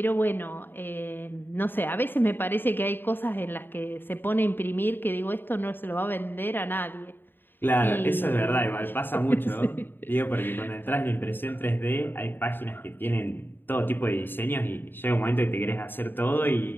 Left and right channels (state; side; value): late; right; 0.096 ms